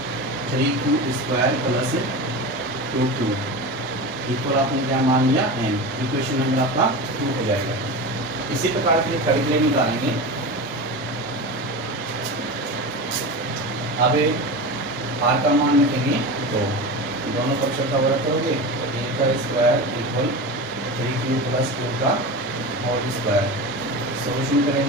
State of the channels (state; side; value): normal; both; correlation 0.27